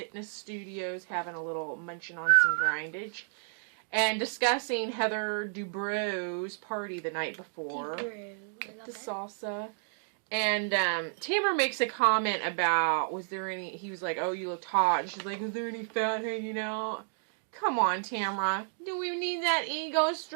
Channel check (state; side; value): silent; left; digital silence